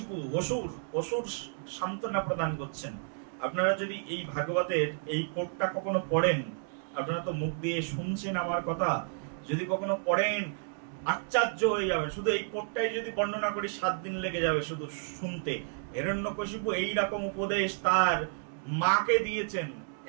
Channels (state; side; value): silent; left; digital silence